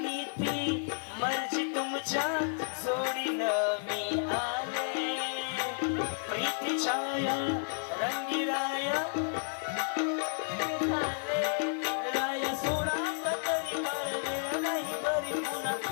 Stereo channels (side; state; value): right; silent; 57 dB below the other